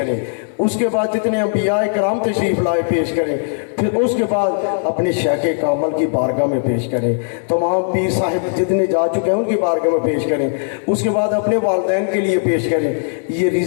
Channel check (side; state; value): right; silent; 67 dB below the other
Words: اس کے بعد جتنے انبیاء کرام تشریف لائے پیش کریں، پھر اس کے بعد اپنے شیخ کامل کی بارگاہ میں پیش کریں، تمام پیر صاحب جتنے جا چکے ہیں ان کی بارگاہ میں پیش کریں، اس کے بعد اپنے والدین کے لیے پیش کریں۔ یہ